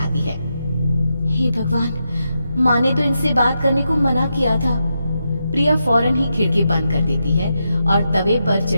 है। हे भगवान, माँ ने तो इनसे बात करने को मना किया था। प्रिया फौरन ही खिड़की बंद कर देती है और तवे पर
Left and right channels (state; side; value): inverted; both; correlation -0.86